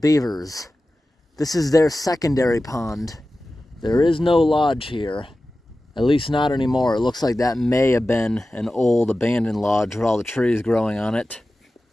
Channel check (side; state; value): both; normal; correlation 0.95